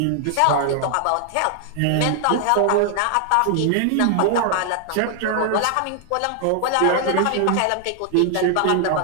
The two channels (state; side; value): different; both; correlation 0.00